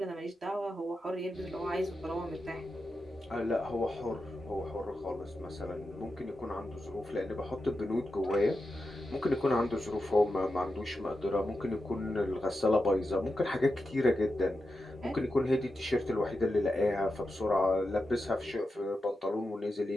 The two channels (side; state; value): both; normal; correlation 0.89